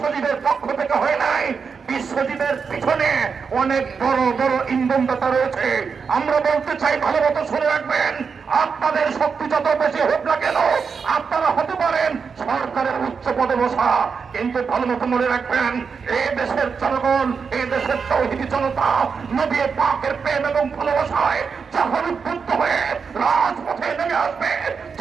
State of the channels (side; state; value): left; quieter; 5.7 dB